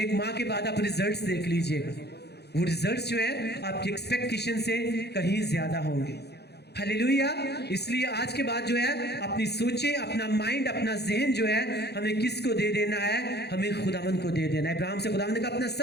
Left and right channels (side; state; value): right; late; 0.48 ms